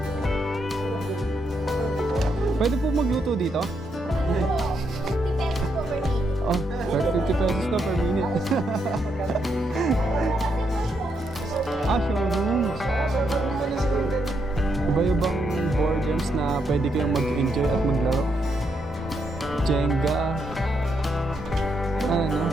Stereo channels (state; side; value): normal; both; correlation 0.79